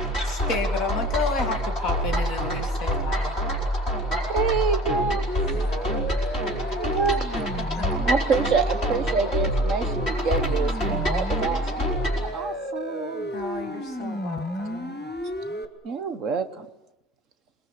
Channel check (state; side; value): normal; both; correlation 0.45